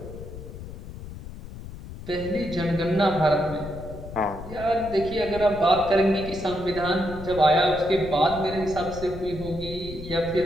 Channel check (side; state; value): left; noise; rumble, 12 dB below the sound